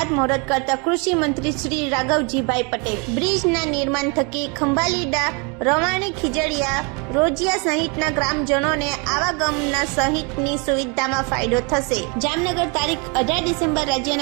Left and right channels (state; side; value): quieter; left; 32.8 dB